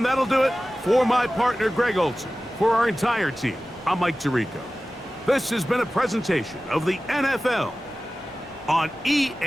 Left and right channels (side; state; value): both; normal; correlation 0.96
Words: that'll do it for my partner, Greg Olson. For our entire team, I'm Mike Tirico. This has been a presentation of the NFL on